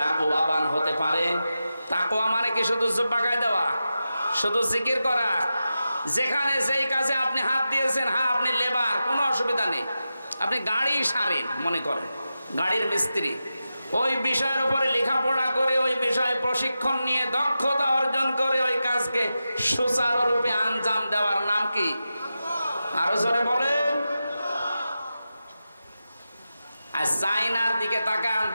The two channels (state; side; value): inverted; both; correlation -0.91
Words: হতে পারে, তাকওয়া মানে কি শুধু জুব্বা গায়ে দেওয়া, শুধু জিকির করা? যেখানে যেই কাজে আপনি হাত দিয়েছেন, হ্যাঁ আপনি লেবার, কোনো অসুবিধা নেই, আপনি গাড়ি সারেন, মনে করেন গাড়ির মিস্ত্রি, ওই বিষয়ের উপরে লেখাপড়া করে ওই বিষয়ে প্রশিক্ষণ নিয়ে দক্ষতা অর্জন করে ওই কাজকে সুচারুরূপে আঞ্জাম দেওয়ার নাম কি? আরো জোরে বলেন। আর চাইনার দিকে তাকান,